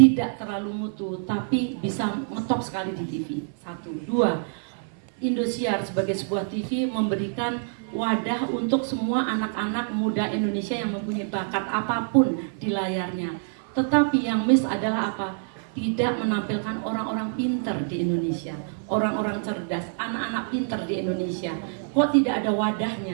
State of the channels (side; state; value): left; silent; 61 dB below the other